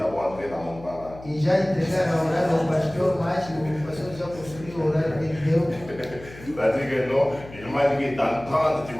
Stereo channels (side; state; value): left; noise; hum, 17 dB below the sound